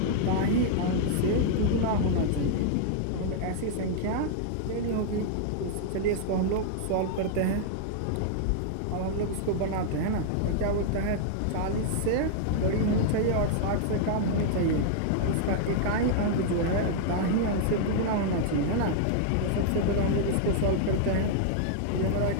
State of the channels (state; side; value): different; both; correlation -0.01